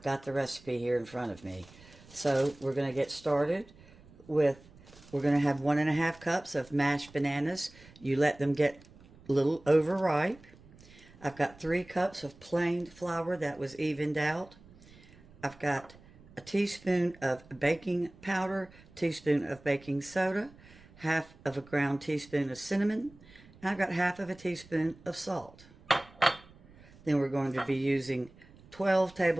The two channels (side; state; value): right; noise; rumble, 24 dB below the sound